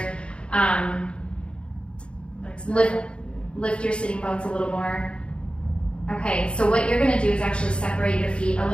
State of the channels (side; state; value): right; late; 0.057 ms